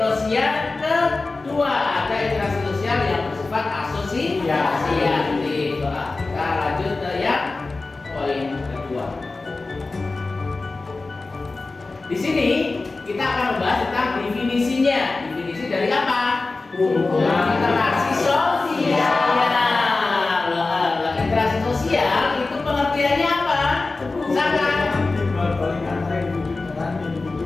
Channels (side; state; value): right; quieter; 3.6 dB